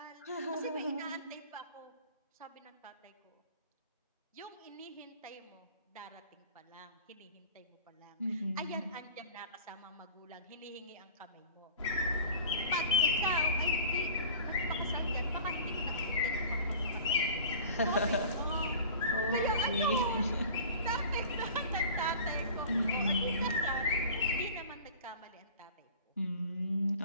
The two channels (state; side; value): inverted; both; correlation -0.42